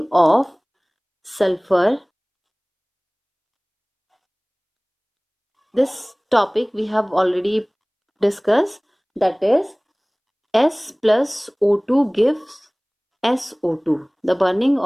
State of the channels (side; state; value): both; identical; correlation 1.00